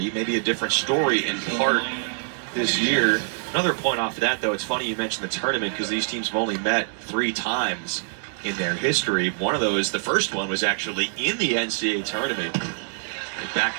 Maybe a different story in part this year. Another point off of that, though, it's funny you mentioned the tournament because these teams have only met 3 times in their history. One of those, the first one, was actually in the NCAA tournament back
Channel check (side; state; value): left; silent; 61 dB below the other